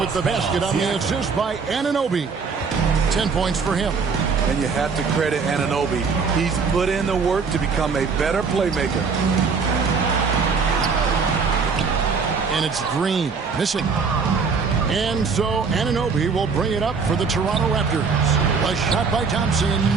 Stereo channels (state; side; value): quieter; left; 5.2 dB